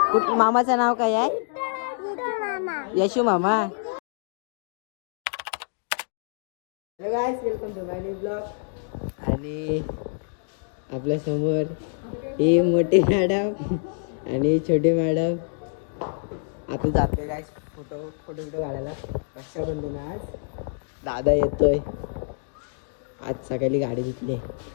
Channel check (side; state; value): right; silent; digital silence